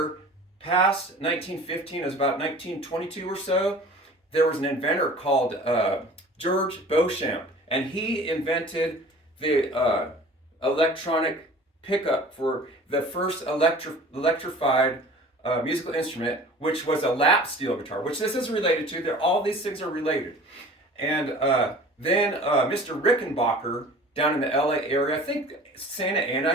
past 1915, it was about 1922 or so, there was an inventor called George Beauchamp, and he invented the electronic pickup for the first electrified musical instrument, which was a lap steel guitar, which this is related to. All these things are related. And then Mr. Rickenbacker down in the LA area, I think Santa Ana,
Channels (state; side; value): normal; both; correlation 0.44